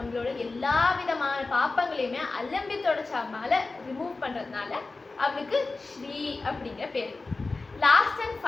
எல்லா விதமான பாப்பங்களையுமே அலம்பி தொடச்சாமல ரிமூவ் பண்றதுனால அவளுக்கு ஸ்ரீ அப்படிங்கிற பேரு. லாஸ்ட் அண்ட்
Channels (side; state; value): right; quieter; 3.6 dB